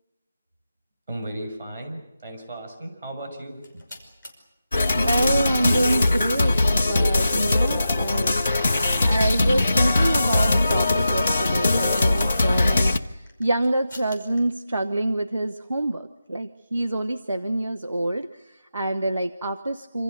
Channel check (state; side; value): inverted; both; correlation -0.90